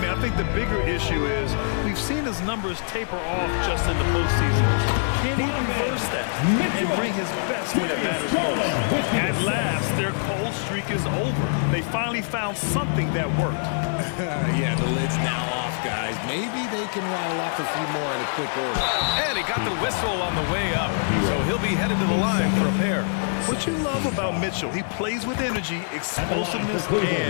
I think the bigger issue is we've seen his numbers taper off just in the postseason. Can he reverse that and bring his best when it matters most? At last, their cold streak is over. They finally found something that worked. Yeah, the lid's now off, guys. Maybe they can rattle off a few more in a quick order. And he got the whistle on the way up, so he'll be headed to the line for a pair. What you love about Mitchell, he plays with energy, explosiveness,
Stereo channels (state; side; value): silent; right; digital silence